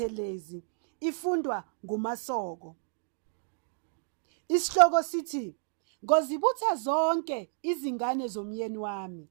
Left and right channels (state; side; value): silent; left; digital silence